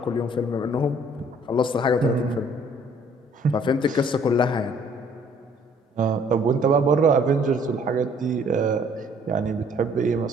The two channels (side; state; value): both; normal; correlation 0.59